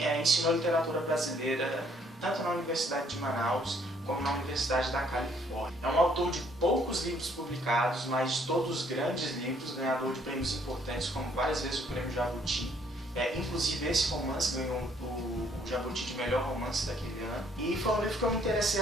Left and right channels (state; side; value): normal; both; correlation 0.65